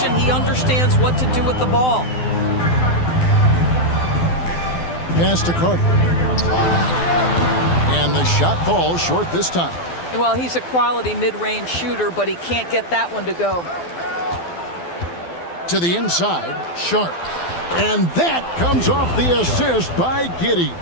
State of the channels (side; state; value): right; late; 12 ms